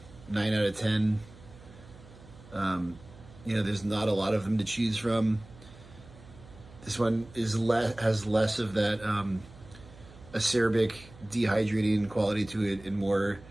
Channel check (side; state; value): right; noise; hum, 21 dB below the sound